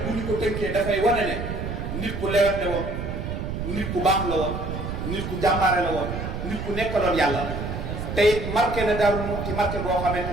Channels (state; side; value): noise; right; rumble, 5 dB below the sound